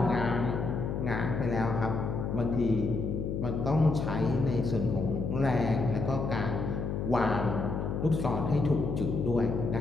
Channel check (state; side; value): noise; left; hum, 2 dB below the sound